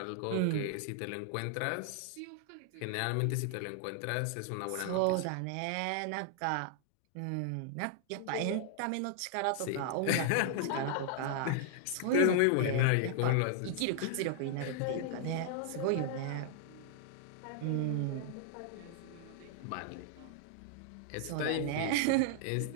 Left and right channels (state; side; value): different; both; correlation -0.01